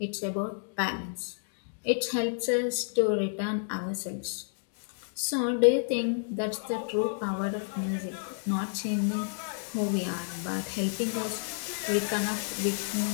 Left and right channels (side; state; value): right; silent; digital silence